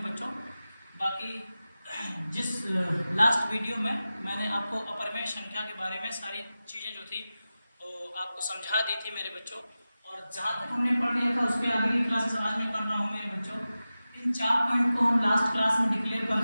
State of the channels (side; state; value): both; inverted; correlation -0.95